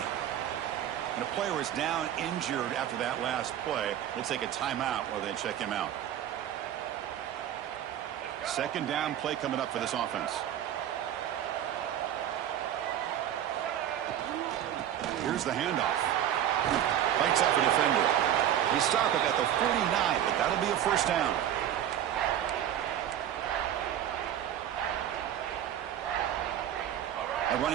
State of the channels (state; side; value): quieter; left; 10.8 dB